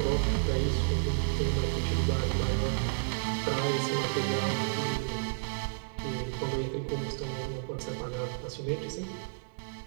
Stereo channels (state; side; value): silent; left; digital silence